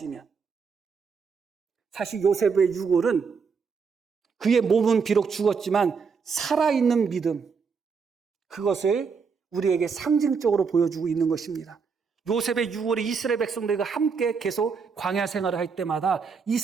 사실 요셉의 유골은 그의 몸은 비록 죽었지만 살아있는 믿음, 그것을 우리에게 상징적으로 보여주고 있는 것입니다. 요셉의 유골이 이스라엘 백성들과 함께 계속 광야 생활을 할 때마다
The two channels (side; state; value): left; quieter; 5.6 dB